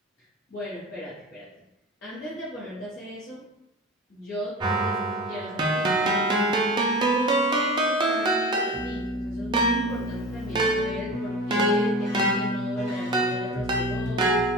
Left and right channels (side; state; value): both; normal; correlation 0.34